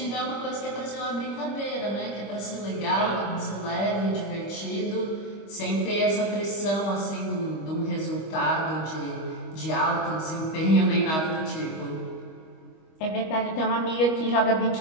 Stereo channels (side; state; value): right; late; 25 ms